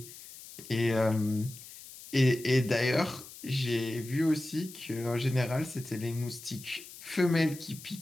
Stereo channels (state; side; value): noise; left; hiss, 16 dB below the sound